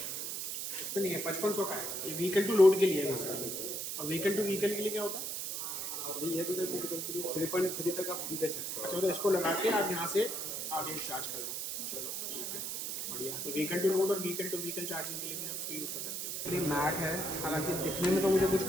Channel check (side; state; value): right; noise; hiss, 3 dB below the sound